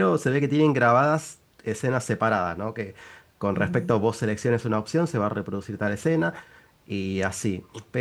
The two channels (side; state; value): both; identical; correlation 1.00